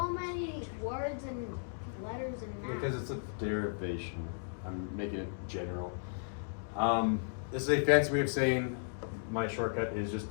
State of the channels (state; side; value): silent; right; digital silence